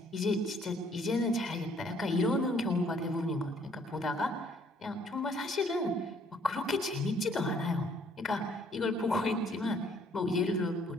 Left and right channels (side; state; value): both; normal; correlation 0.63